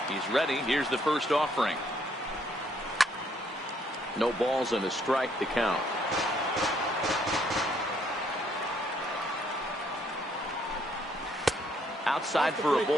He's ready. Here's the first offering. No balls and a strike to count. Outside for a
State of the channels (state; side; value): normal; both; correlation 0.68